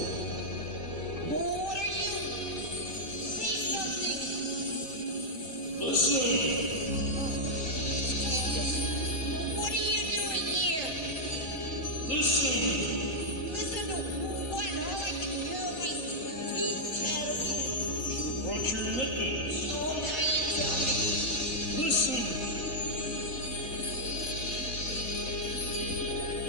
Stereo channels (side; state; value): right; late; 3.6 ms